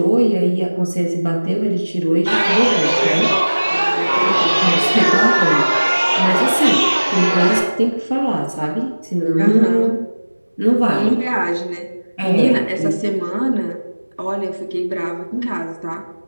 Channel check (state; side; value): inverted; both; correlation -1.00